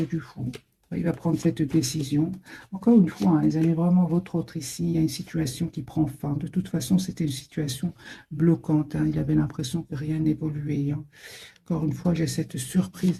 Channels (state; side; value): identical; both; correlation 1.00